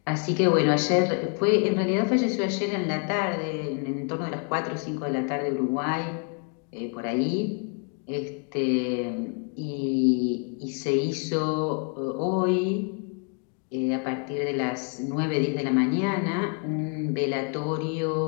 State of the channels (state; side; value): quieter; right; 39.1 dB